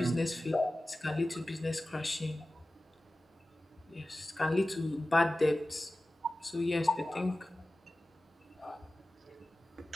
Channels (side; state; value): both; normal; correlation 0.96